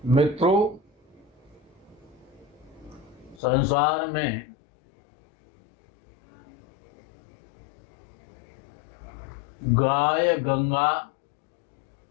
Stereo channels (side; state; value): right; drops out; at 3.4 s